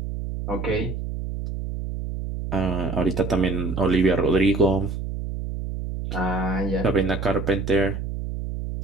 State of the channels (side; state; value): right; noise; hum, 5 dB below the sound